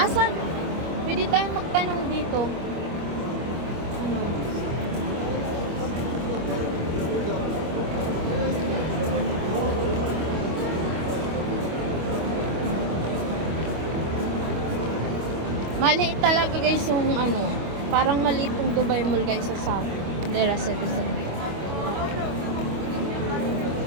Saan? Pwede tayong magtanong dito. Ano? Maliit talaga guys yung ano. Parang maliit yung Dubai Mall guys sa South. Dera Citizen.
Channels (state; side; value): late; left; 25 ms